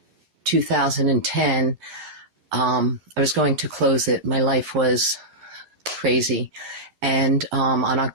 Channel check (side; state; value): left; late; 11 ms